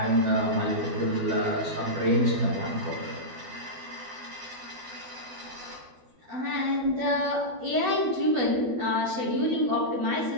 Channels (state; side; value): late; left; 12 ms